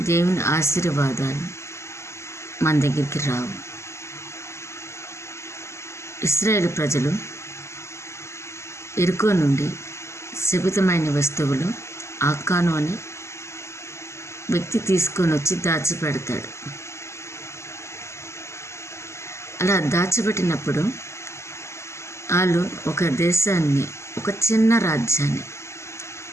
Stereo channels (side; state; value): right; late; 0.13 ms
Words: దేవుని ఆశీర్వాదాలు మన దగ్గరికి రావు. ఇశ్రాయేలు ప్రజలు ఎరుకో నుండి శపితమైన వస్తువులు ఆకాను అని వ్యక్తి తీసుకొని వచ్చి దాచిపెడతాడు. అలా దాచిపెట్టినప్పుడు వాళ్ళు ఒక దేశాన్ని, ఒక చిన్న రాజ్యాన్ని